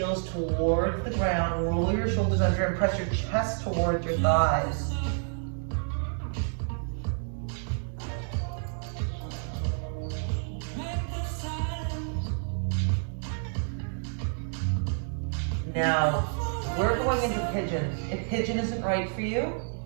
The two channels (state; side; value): silent; left; 59 dB below the other